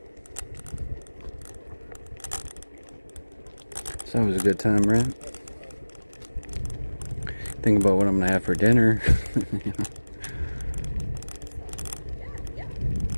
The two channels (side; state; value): both; inverted; correlation -1.00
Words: It's always a good time, right? Think about what I'm gonna have for dinner. You know?